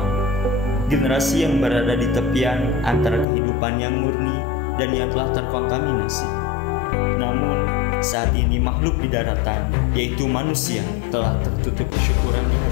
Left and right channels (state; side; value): drops out; right; at 3.2 s